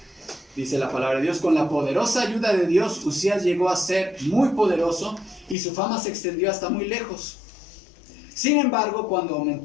Dice la palabra de Dios: con la poderosa ayuda de Dios, Usías llegó a ser muy poderoso y su fama se extendió hasta muy lejos. Sin embargo, cuando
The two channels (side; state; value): right; drops out; at 5.6 s